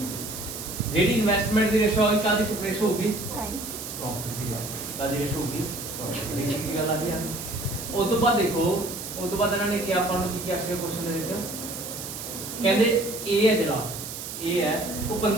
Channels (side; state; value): right; noise; hiss, 8 dB below the sound